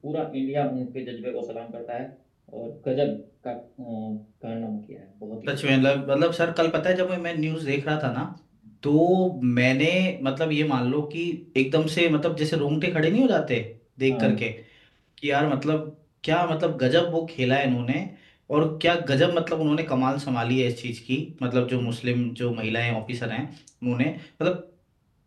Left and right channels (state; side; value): identical; both; correlation 1.00